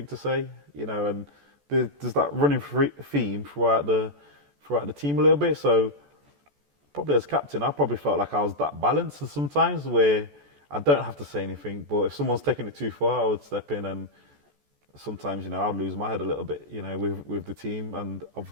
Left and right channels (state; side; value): late; left; 14 ms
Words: to say, and there's that running theme throughout the team a little bit. So probably as captain, I probably felt like I was that balanced sometimes where I don't have to say anything, but if someone's taking it too far, I would step in, and sometimes, I'd lose my head a little bit, with the team, and I've